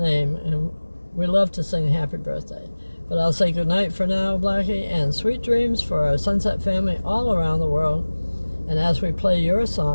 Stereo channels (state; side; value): inverted; both; correlation -1.00